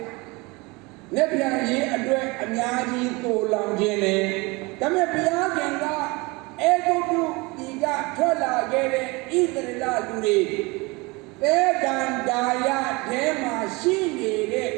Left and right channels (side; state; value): left; quieter; 25.3 dB